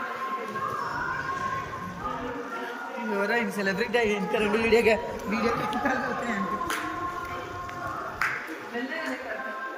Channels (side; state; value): both; identical; correlation 1.00